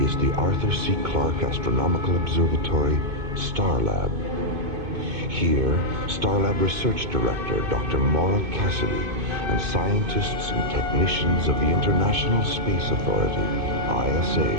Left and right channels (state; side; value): late; left; 2.5 ms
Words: is the Arthur C. Clarke Astronomical Observatory, Starlab. Here, Starlab Research Director Dr. Maura Cassidy and scientists and technicians of the International Space Authority,